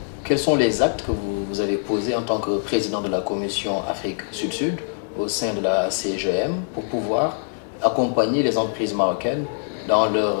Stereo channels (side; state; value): right; silent; digital silence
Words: quels sont les actes que vous avez posés en tant que président de la commission Afrique Sud-Sud au sein de la CGM pour pouvoir accompagner les entreprises marocaines dans leur,